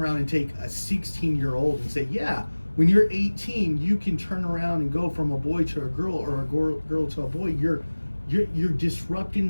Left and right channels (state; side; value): inverted; both; correlation -1.00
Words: and take a 16-year-old and say, yeah, when you're 18, you can turn around and go from a boy to a girl or a girl to a boy. You're